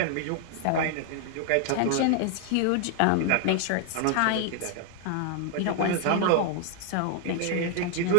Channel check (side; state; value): both; different; correlation 0.00